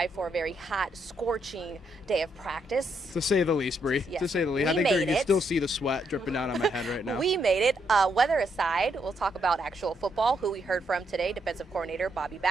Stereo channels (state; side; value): normal; both; correlation 0.77